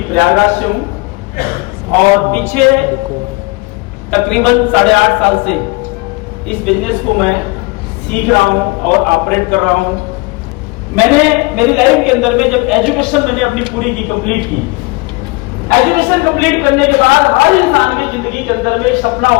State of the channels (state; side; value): quieter; right; 25.6 dB